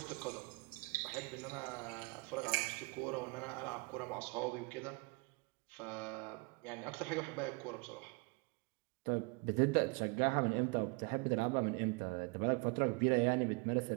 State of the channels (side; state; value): left; quieter; 28.8 dB